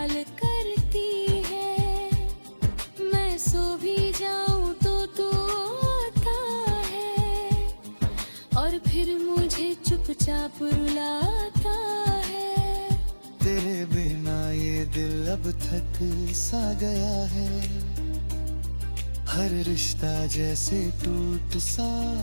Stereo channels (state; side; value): inverted; both; correlation -1.00